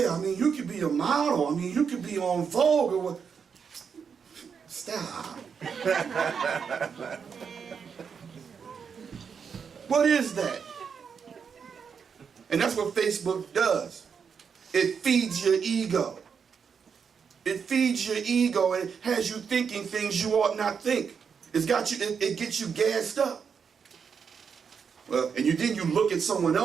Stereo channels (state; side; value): quieter; left; 6.5 dB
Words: I mean, you could be a model. I mean, you could be on Vogue or what. Stop. What is that? And that's what Facebook does. It feeds your ego. It feeds your ego and has you thinking things you ought not think. It's got you, it gets you gassed up. Well, and then you look at someone